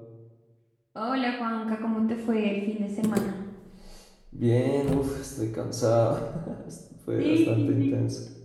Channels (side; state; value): both; identical; correlation 1.00